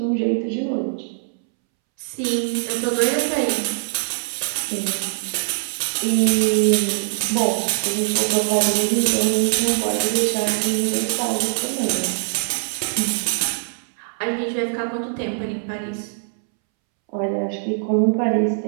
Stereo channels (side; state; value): left; silent; 64 dB below the other